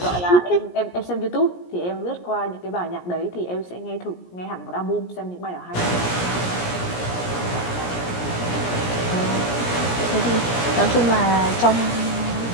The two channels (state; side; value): late; right; 17 ms